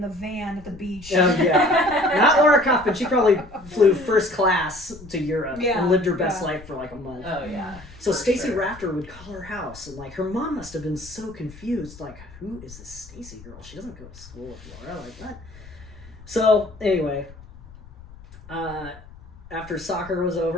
the van at the beach. Yeah. Not Laura Kaufman. She probably flew first class to Europe Yeah, and lived her best yeah. life for like a month. Oh yeah. So for Stacy sure. Rafter would call her house, and like her mom must have been so confused. Like, who is this Stacy girl? She doesn't go to school with Laura. Like that. So anyway, after soccer was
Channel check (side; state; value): left; noise; rumble, 19 dB below the sound